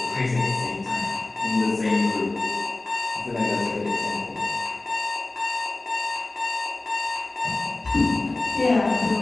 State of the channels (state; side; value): quieter; right; 3.1 dB